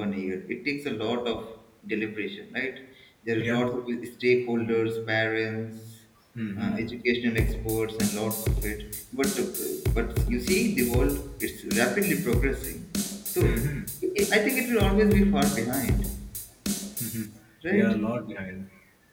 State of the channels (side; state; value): both; identical; correlation 1.00